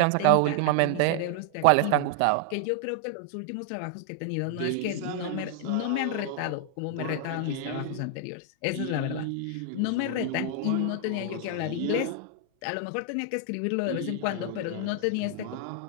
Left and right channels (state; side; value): different; both; correlation 0.00